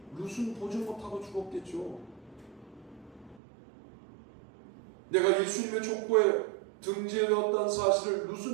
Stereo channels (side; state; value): left; drops out; at 3.4 s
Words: 룻은 보지 못하고 죽었겠죠. 내가 예수님의 족보에 등재되었다는 사실을